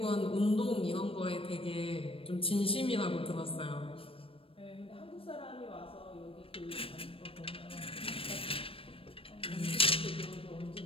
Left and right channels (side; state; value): right; late; 0.27 ms